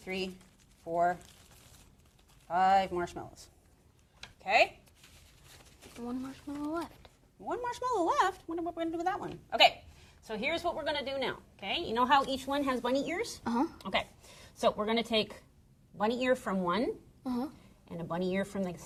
4, 5 marshmallows. Okay? One marshmallow left. 1 marshmallow left. What are we going to do with that one? Okay. So here's what we're going to do now. Okay? You know how each one has bunny ears? Uh-huh. Okay. So we're going to take bunny ear from one Uh-huh. and a bunny ear from the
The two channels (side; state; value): both; identical; correlation 1.00